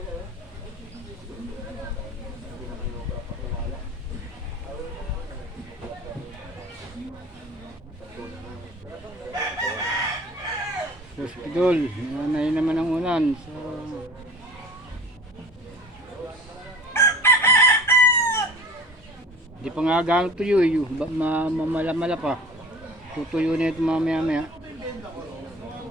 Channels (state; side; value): normal; both; correlation 0.42